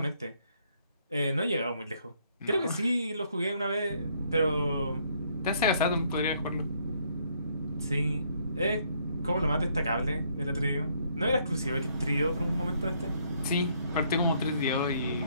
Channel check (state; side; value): inverted; both; correlation -0.68